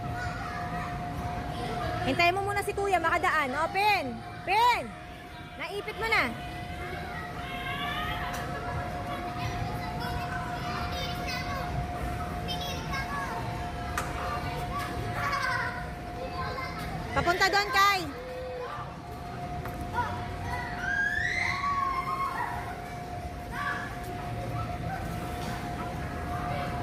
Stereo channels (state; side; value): identical; both; correlation 1.00